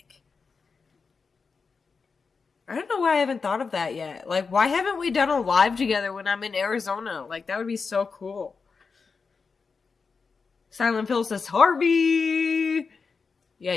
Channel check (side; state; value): right; quieter; 5.0 dB